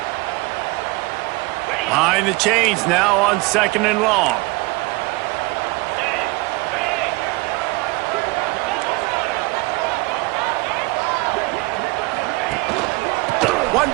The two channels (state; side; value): quieter; left; 24.0 dB